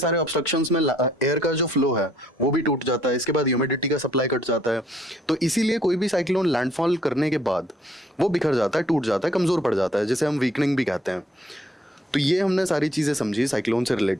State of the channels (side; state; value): both; normal; correlation 0.65